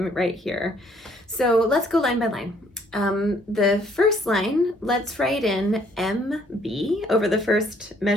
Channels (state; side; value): normal; both; correlation 0.64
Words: right here. So let's go line by line. The first line, let's write in MB over the first